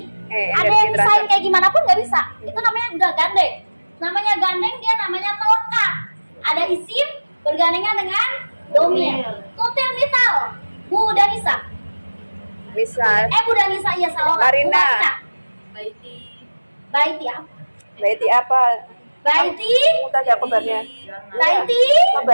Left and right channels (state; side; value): inverted; both; correlation -1.00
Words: Ada energi yang misain transfer. kayak gimana pun nggak bisa. Itu namanya udah gandeng. Namanya gandeng dia namanya melekat. Ada isim bergandengan dengan domir. Tutil misal. Bu Danisa. Misal Bu Danisa iya salah. Marina. Bu Marina. Baiti. Baiti ya. Baiti apa? Baiti. Kita ada kabarnya. Baiti.